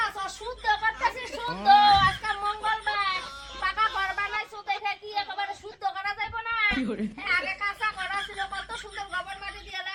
শুদ্ধ করতেছিস শুদ্ধ আজকে মঙ্গলবার পাকা ঘর বানাইছো দেখে কি একেবারে শুদ্ধ করা যাবে না আগে কাঁচা করা ছিল কত সুন্দর গোবর মাটি দিয়ে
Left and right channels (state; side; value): identical; both; correlation 1.00